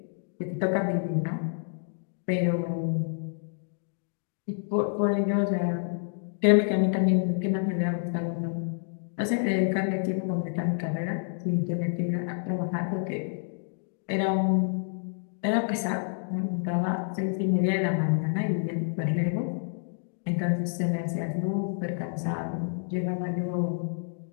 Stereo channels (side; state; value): right; silent; digital silence